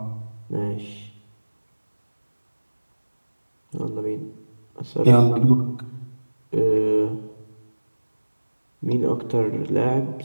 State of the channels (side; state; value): both; inverted; correlation -1.00